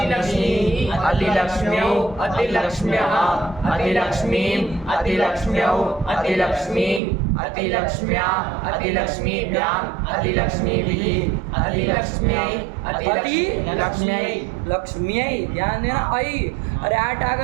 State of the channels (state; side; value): drops out; left; at 7.0 s